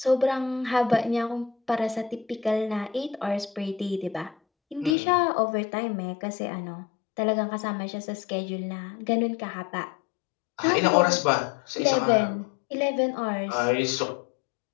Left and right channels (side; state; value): right; drops out; at 5.0 s